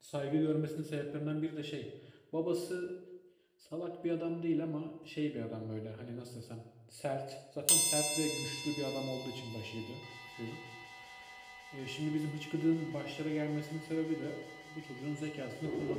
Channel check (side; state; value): both; identical; correlation 1.00